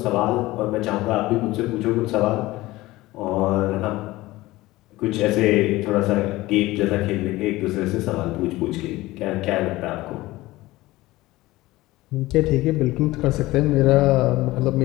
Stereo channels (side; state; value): right; quieter; 18.6 dB